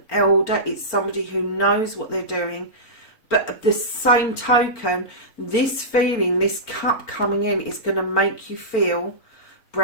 elder. It's somebody who knows what they're doing. But at the same token, this feeling, this cup coming in is going to make you feel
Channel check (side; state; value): right; late; 4.4 ms